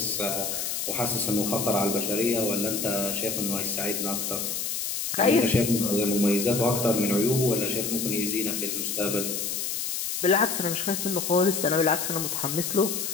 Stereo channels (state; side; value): noise; left; hiss, 2 dB below the sound